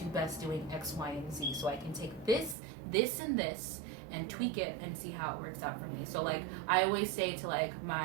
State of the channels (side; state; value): left; drops out; at 2.6 s